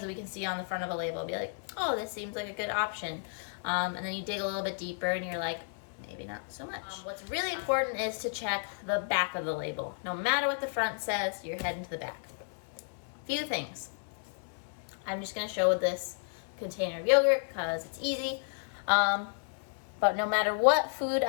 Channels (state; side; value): silent; right; digital silence